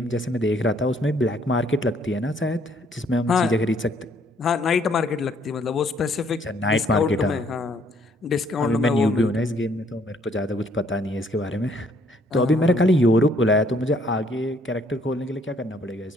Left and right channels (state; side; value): normal; both; correlation 0.65